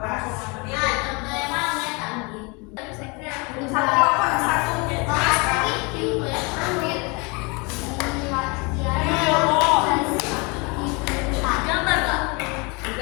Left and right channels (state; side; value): quieter; right; 29.3 dB